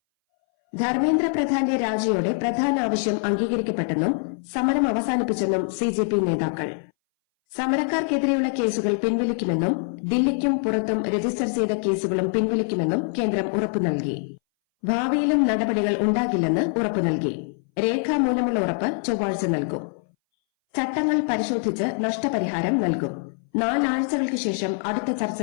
ധർമ്മേന്ദ്ര പ്രധാന്റെ രാജിയോടെ പ്രധാന ആവശ്യം അംഗീകരിക്കപ്പെട്ടെന്നും സമരം അവസാനിപ്പിച്ചെന്നും CJP നേതാക്കൾ. സമരക്കാർക്കെതിരെയുള്ള കേസുകൾ പിൻവലിക്കുമെന്നും ദില്ലിക്കും പുറത്തും രജിസ്റ്റർ ചെയ്ത കേസുകളും പിൻവലിക്കുമെന്നും കേന്ദ്രം ഉറപ്പു നൽകി. ഭാവിയിലും നടപടികൾ ഉണ്ടാകില്ലെന്ന് ഉറപ്പു നൽകി. രേഖാമൂലമുള്ള ഉറപ്പ് ചൊവ്വാഴ്ച നൽകും. ചട്ടങ്ങൾ പരിശോധിച്ച് നഷ്ടപരിഹാരം നൽകും. 4 ആഴ്ചകൾക്ക് ശേഷം അടുത്ത ചർച്ച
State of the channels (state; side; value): silent; right; 61 dB below the other